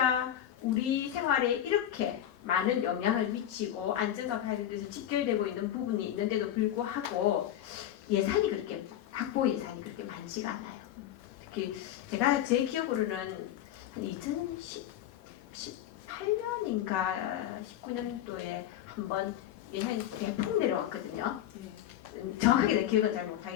우리 생활에 이렇게 많은 영향을 미치고 안전과 관련돼서 직결되고 있는 부분이 있는데도 불구하고 예산이 그렇게 확보 예산이 그렇게 많지가 않아요. 특히 제가 제 기억으로는 한 2018년인가 19년도에 한번 예산이 대폭 내려왔거든요. 정확하게 내 기억은 잘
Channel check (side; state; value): right; quieter; 11.5 dB